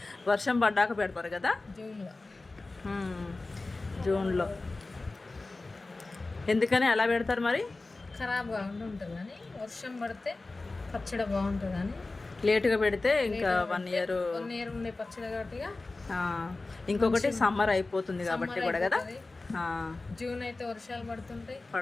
వర్షం పడ్డాక పెడతారు కదా, జూన్లో. ఎందుకని అలా పెడతారు మరి? ఖరాబ్ కాకుండా ఉంటుంది కానీ, వర్షం పడితే పచ్చడి బాగుంటుంది అని. లేటుగా పెడితే ఇంకా 1 ఇయర్ ఉండే పచ్చడి కాబట్టి. ఇంకొకటి సమ్మర్ అయిపోతుంది కాబట్టి కూడా కదా. జూన్ అయితే వర్షాలు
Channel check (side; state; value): right; quieter; 3.3 dB